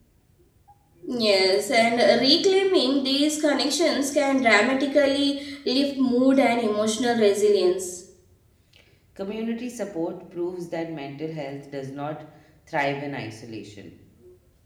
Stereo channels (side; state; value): both; identical; correlation 1.00